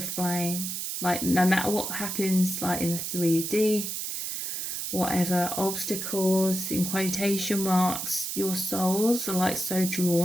flame. Like no matter what happens, like in the 3D, whatever obstacles in quotation marks, your souls are like so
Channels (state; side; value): noise; right; hiss, 4 dB below the sound